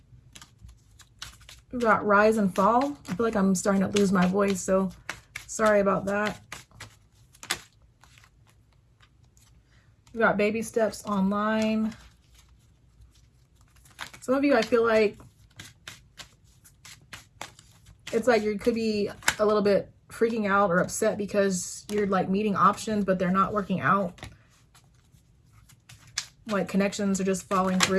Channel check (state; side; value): identical; both; correlation 1.00